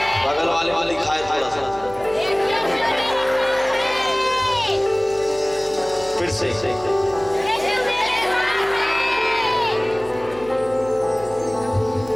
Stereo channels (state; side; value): noise; left; hum, 20 dB below the sound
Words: बगल वाले खाए थोड़ा सा फिर से।